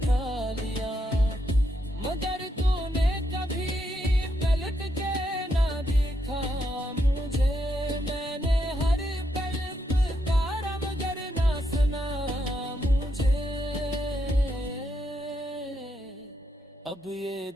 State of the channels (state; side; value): normal; both; correlation 0.79